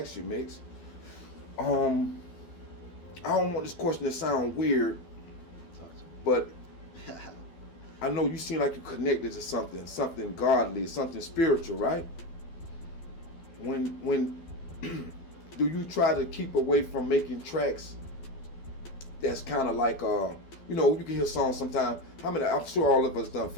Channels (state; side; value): late; right; 12 ms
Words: you, Mix. I don't want this question to sound weird, but I know you seem like you're connected to something godly, something spiritual, right? When do you try to keep away from making tracks that's kind of like, you know, you can hear songs sometimes. I'm sure all of us done